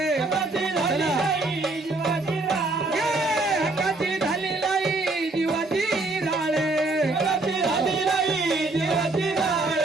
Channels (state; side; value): quieter; left; 3.1 dB